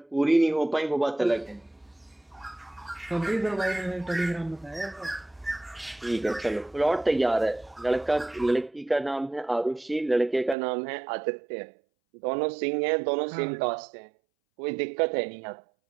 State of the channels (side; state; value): left; drops out; at 10.6 s